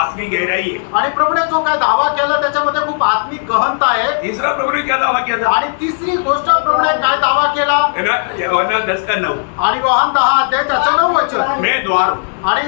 गहराई है। आणि प्रभूने जो काय दावा केला त्याच्यामध्ये खूप आत्मिक गहनता आहे. तीसरा प्रभु ने क्या दावा किया था? आणि तिसरी गोष्ट प्रभूने काय दावा केला? है ना? यूहन्ना 10:9। आणि योहान 10 अध्याय त्याचं 9 वचन. मैं द्वार हूँ।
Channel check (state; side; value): silent; right; digital silence